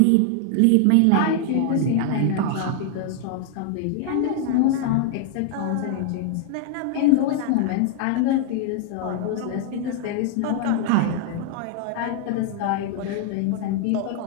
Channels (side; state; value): both; different; correlation 0.00